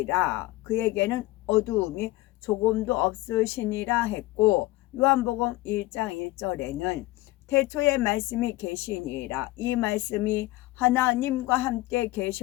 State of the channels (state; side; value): quieter; right; 18.6 dB